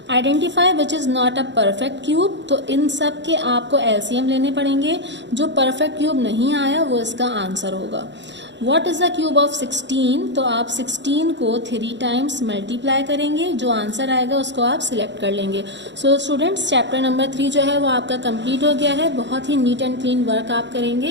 Identify which is not a perfect cube, तो इन सब के आपको एलसीएम लेने पड़ेंगे, जो परफेक्ट क्यूब नहीं आया वो इसका आंसर होगा। What is the cube of 16, तो आप 16 को 3 टाइम्स मल्टीप्लाई करेंगे, जो आंसर आएगा उसको आप सिलेक्ट कर लेंगे। सो स्टूडेंट्स, चैप्टर नंबर 3 जो है वो आपका कंप्लीट हो गया है। बहुत ही नीट एंड क्लीन वर्क आप करेंगे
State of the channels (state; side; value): late; left; 0.52 ms